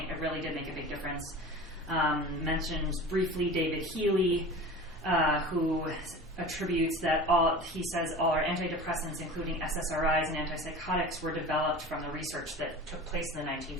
it really did make a big difference. Mentions briefly David Healy, who attributes that all our antidepressants, including SSRIs and antipsychotics, were developed from the research that took place in the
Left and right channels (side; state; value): both; normal; correlation 0.35